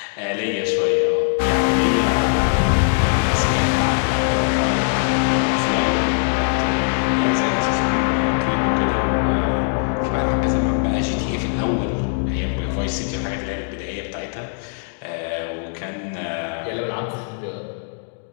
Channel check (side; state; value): right; silent; digital silence